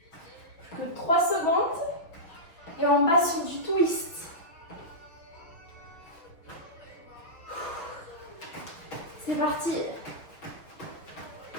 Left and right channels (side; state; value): right; late; 6.0 ms